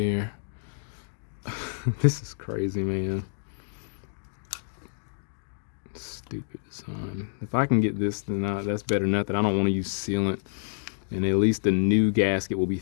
This is crazy, man. Stupid design. If I can get this, then that's better than nothing. I don't want to use sealant, and at least the new gasket will be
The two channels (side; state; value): right; silent; digital silence